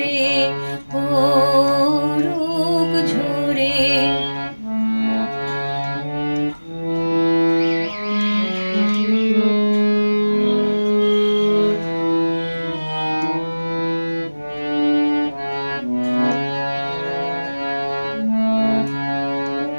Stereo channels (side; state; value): both; inverted; correlation -1.00